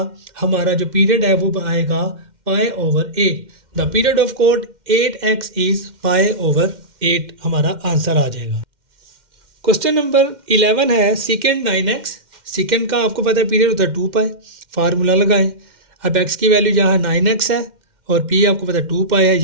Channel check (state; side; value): late; left; 2.1 ms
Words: हमारा जो पीरियड है वो आएगा π/8। The period of cot 8x is π/8 हमारा आंसर आ जाएगा। क्वेश्चन नंबर 11 है सेकेंड 9x। सेकेंड का आपको पता है पीरियड होता है 2 पाई। फार्मूला लगाएं। अब x की वैल्यू जहाँ 9x है और p आपको पता है 2 पाई है,